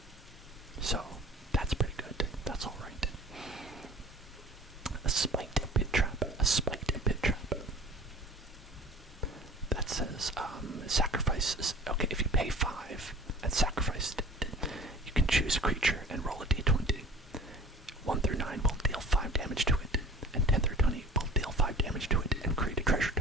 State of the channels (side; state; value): both; normal; correlation 0.43